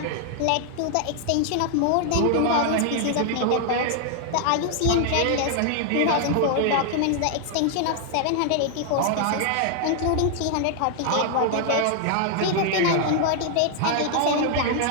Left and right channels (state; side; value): different; both; correlation 0.00